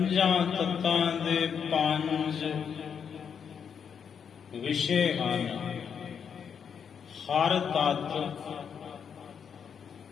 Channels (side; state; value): right; quieter; 7.2 dB